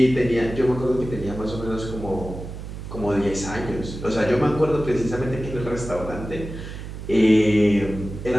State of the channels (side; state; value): right; noise; hum, 10 dB below the sound